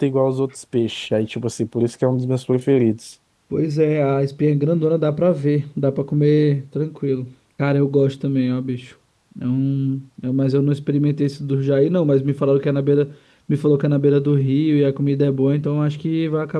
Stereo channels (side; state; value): both; identical; correlation 1.00